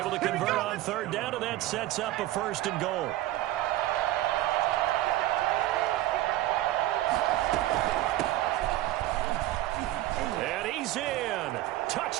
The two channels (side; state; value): left; quieter; 15.4 dB